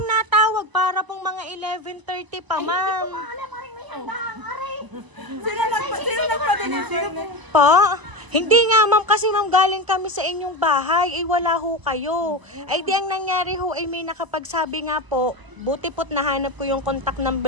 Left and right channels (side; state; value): left; late; 1.0 ms